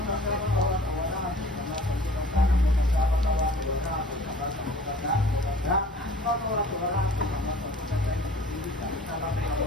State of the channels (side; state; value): both; normal; correlation 0.48